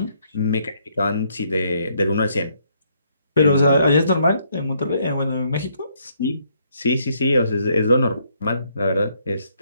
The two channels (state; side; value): inverted; both; correlation -0.71